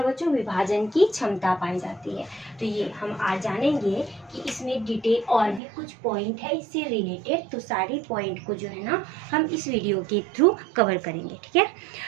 बच्चों, विभाजन की क्षमता पाई जाती है। तो ये हम आज जानेंगे कि इसमें डिटेल और भी कुछ पॉइंट है इससे रिलेटेड, तो सारे पॉइंट को जो है ना हम इस वीडियो के थ्रू कवर करेंगे। ठीक है,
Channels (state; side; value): drops out; left; at 5.6 s